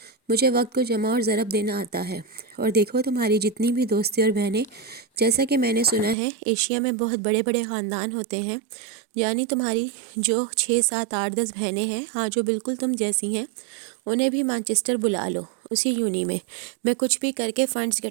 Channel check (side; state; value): left; drops out; at 6.2 s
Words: مجھے وقت کو جمع اور ضرب دینا آتا ہے۔ اور دیکھو تمہاری جتنی بھی دوستی اور بہنیں، جیسا کہ میں نے سنا ہے ایشیا میں بہت بڑے بڑے خاندان ہوتے ہیں، یعنی تمہاری جو 6 7 8 10 بہنیں ہیں، ہاں جو بالکل تم جیسی ہیں، انہیں بھی مانچسٹر بلا لو، اسی یونی میں کچھ بھی کر کے فنڈز